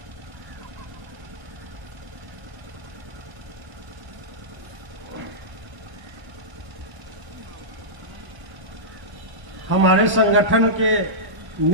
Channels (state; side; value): late; left; 1.1 ms